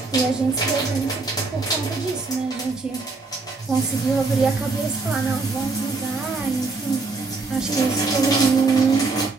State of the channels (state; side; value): quieter; left; 3.9 dB